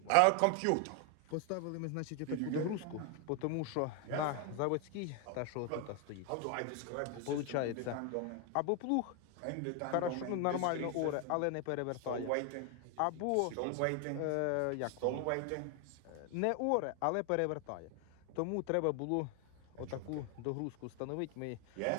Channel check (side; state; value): both; different; correlation 0.01